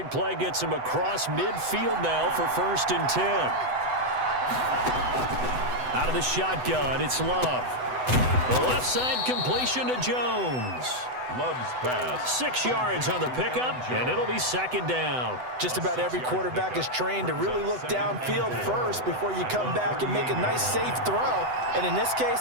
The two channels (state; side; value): late; left; 8.0 ms